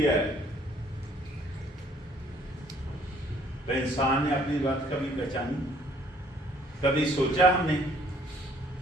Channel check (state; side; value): normal; both; correlation 0.61